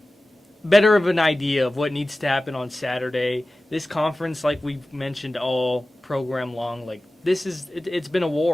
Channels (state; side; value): normal; both; correlation 0.96